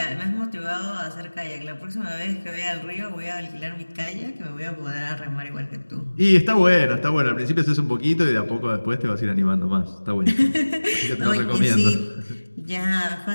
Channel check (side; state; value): both; inverted; correlation -1.00